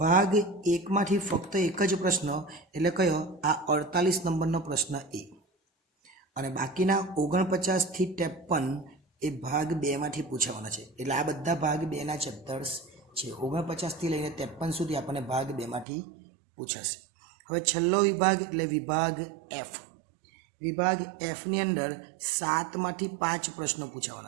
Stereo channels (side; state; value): left; drops out; at 15.9 s